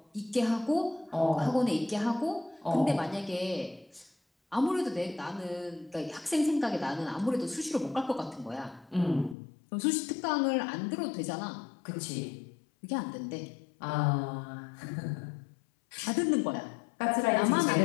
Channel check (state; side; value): drops out; right; at 9.3 s